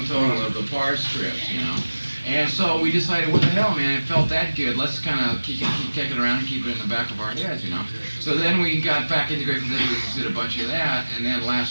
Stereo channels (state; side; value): inverted; both; correlation -1.00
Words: total of the parts strips, you know. And so we decided, what the hell, man, it felt that good, let's kind of keep kicking around and keep it in the back of our heads, you know. So then we got back into Grateful Dead, we did a bunch of that, and then